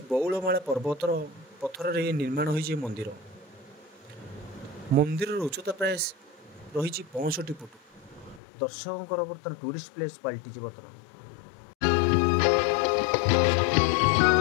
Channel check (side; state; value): right; drops out; at 8.4 s